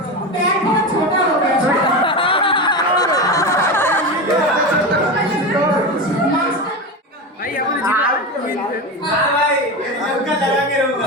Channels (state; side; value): normal; both; correlation 0.21